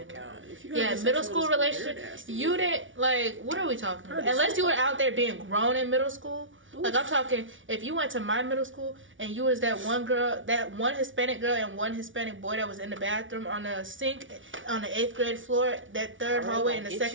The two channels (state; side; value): late; left; 0.56 ms